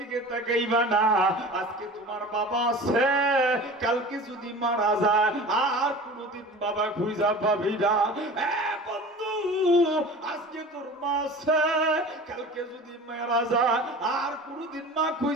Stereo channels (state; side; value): normal; both; correlation 0.38